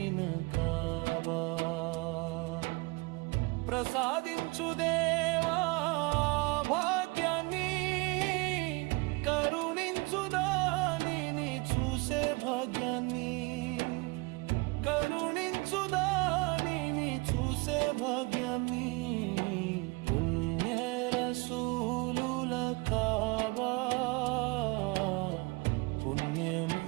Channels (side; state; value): left; quieter; 26.7 dB